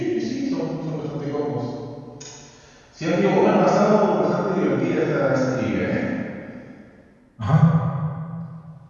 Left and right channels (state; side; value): identical; both; correlation 1.00